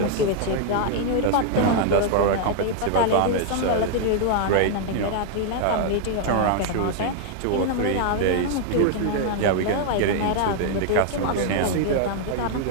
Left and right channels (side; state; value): both; different; correlation 0.00